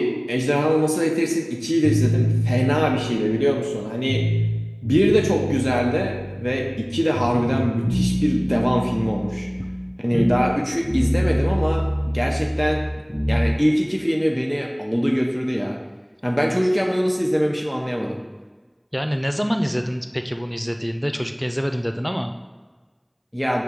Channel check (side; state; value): both; identical; correlation 1.00